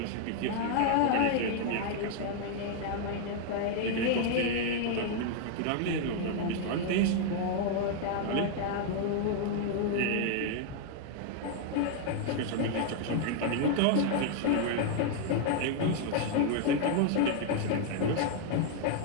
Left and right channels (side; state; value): both; different; correlation 0.00